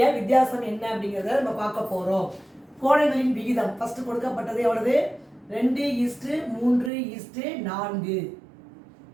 வித்தியாசம் என்ன அப்படிங்கிறத நம்ம பார்க்க போகிறோம். கோணங்களின் விகிதம் ஃபர்ஸ்ட் கொடுக்கப்பட்டது எவ்வளவு? 2:3:4.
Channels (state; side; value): drops out; left; at 6.9 s